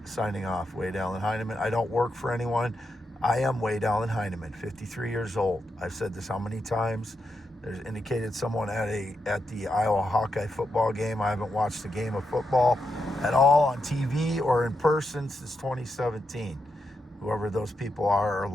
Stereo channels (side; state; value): both; normal; correlation 0.85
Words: signing off, Wade Allen Heineman. I don't work for anyone. I am Wade Allen Heineman, 53 years old. I've said this how many times? There's indicated someone at the Iowa Hawkeye football game. I haven't watched a game of football at all on TV or in person since 2017. Whoever those people are